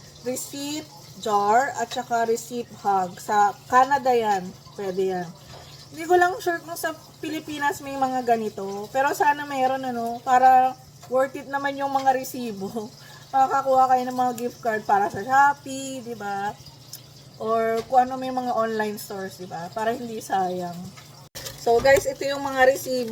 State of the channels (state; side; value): identical; both; correlation 1.00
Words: Receipt Jar at saka Receipt Hug. Sa Canada yan. Pwede yan. Hindi ko lang sure kung sa Pilipinas may mga ganito. Pero sana mayroon para worth it naman yung mga resibo. Makakakuha kayo ng mga gift card para sa Shopee, di ba? Or kung ano may mga online stores, diba? Para hindi sayang. So, guys, ito yung mga